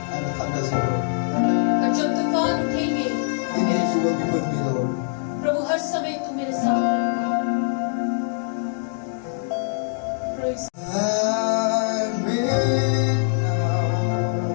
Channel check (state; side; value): silent; right; digital silence